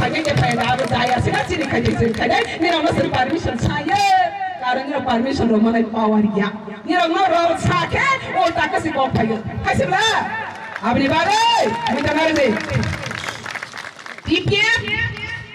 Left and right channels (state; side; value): identical; both; correlation 1.00